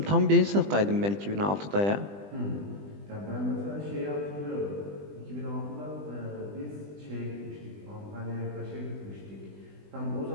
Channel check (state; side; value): late; left; 20 ms